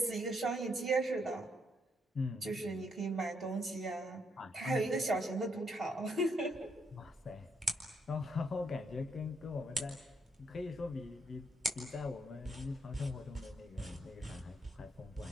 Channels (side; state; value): both; normal; correlation 0.75